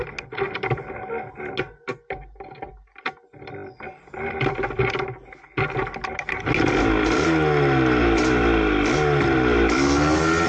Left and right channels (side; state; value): both; identical; correlation 1.00